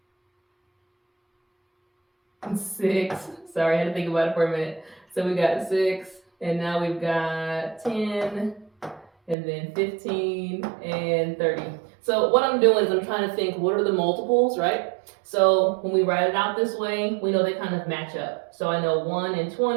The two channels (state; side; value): drops out; left; at 9.3 s